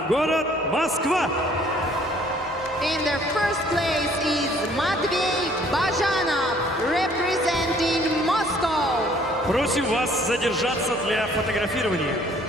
город Москва. In the first place is Matvey Bajanov, representing Moscow. Просим вас задержаться для фотографирования.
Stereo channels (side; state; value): both; normal; correlation 0.59